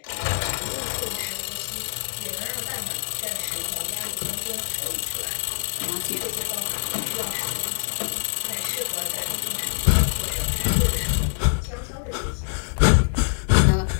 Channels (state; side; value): silent; right; digital silence